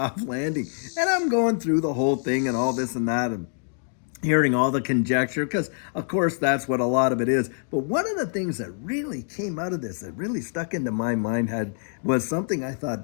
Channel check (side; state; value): right; silent; digital silence